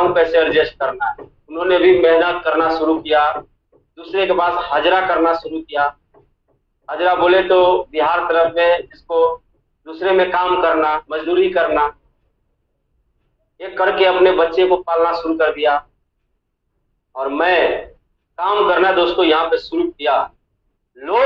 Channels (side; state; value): both; identical; correlation 1.00